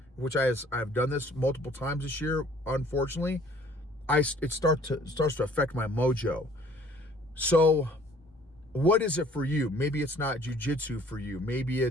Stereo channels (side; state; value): both; normal; correlation 0.56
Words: which I've done this multiple times this year, unfortunately, it starts to affect my mojo. So what is it for you? Maybe it's not jiu-jitsu for you. Maybe